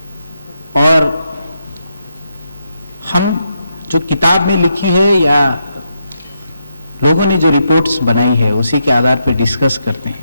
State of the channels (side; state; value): both; inverted; correlation -0.82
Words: और हम जो किताब में लिखी है या लोगों ने जो रिपोर्ट्स बनाई है उसी के आधार पर डिस्कस करते हैं।